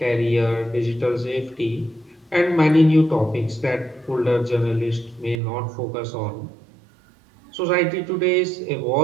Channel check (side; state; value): left; drops out; at 5.4 s